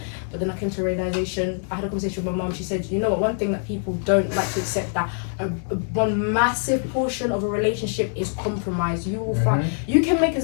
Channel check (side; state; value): right; silent; 63 dB below the other